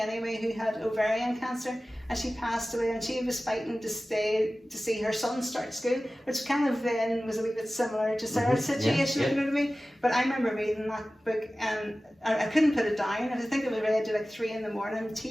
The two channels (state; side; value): normal; both; correlation 0.96